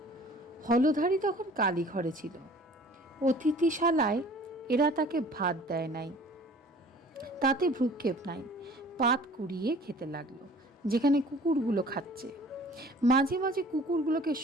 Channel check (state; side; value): normal; both; correlation 0.49